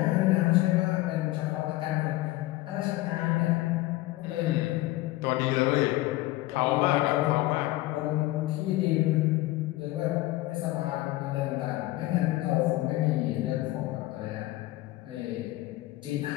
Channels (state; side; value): quieter; right; 17.9 dB